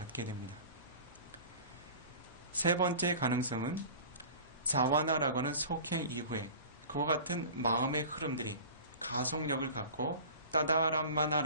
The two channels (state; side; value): inverted; both; correlation -0.39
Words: 됩니다. 세 번째 가능성은 자와나라고 하는 속행 이후에 그와 같은 마음의 흐름들이 가속력을 갖고